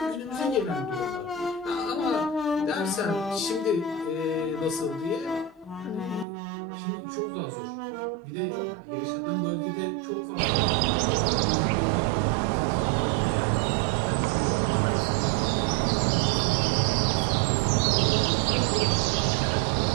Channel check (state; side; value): drops out; left; at 6.2 s